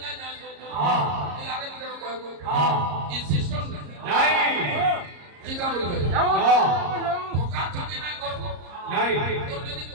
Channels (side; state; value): left; late; 34 ms